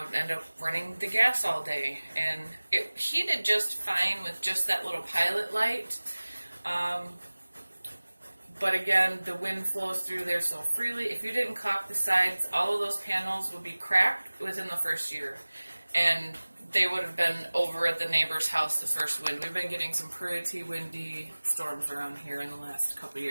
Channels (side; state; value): both; inverted; correlation -1.00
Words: would end up running the gas all day. And it heated just fine with just that little pilot light. But again, the wind flows through there so freely. If you didn't caulk the sides, all of those panels would be cracked within the first year. And they would have been over at the neighbor's house the first wind. We've been getting some pretty windy storms around here in the last couple of